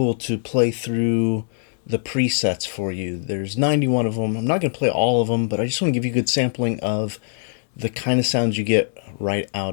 to play through the presets for you. There's 91 of them. I'm not gonna play all of them, but I just want to give you a good sampling of the kind of sounds you get right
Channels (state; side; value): silent; right; 64 dB below the other